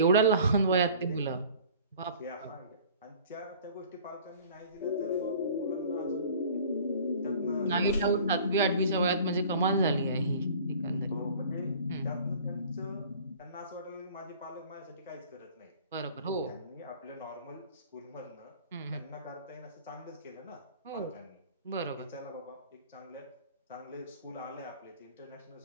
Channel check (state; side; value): inverted; both; correlation -0.47